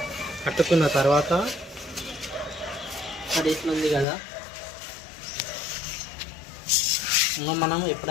కట్టుకున్న తర్వాత అది ఇట్లా ఉంది కదా, మనం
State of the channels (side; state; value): right; drops out; at 4.0 s